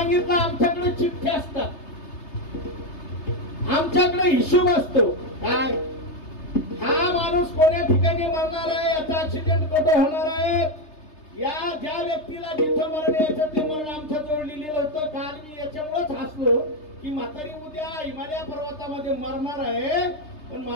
आमच्याकडे चिठ्ठ्या असतात, आमच्याकडे हिशोब असतो. काय हा माणूस कोण्या ठिकाणी मरणार आहे, याचा ऍक्सिडेंट कुठं होणार आहे, या ज्या व्यक्तीला जिथं मरण यायचं ते मरण आमच्या जवळ लिहिलेलं होतं. काल मी याच्यामुळेच हसलो की म्हातारी उद्या हिमालय पर्वतामध्ये मरणार आहे, पण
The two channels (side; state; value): right; late; 3.3 ms